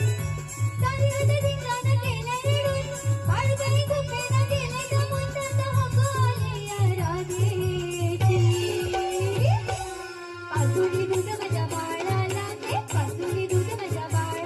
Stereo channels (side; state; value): both; identical; correlation 1.00